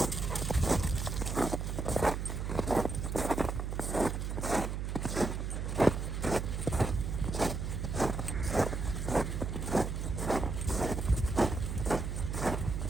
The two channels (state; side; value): noise; right; hum, 3 dB below the sound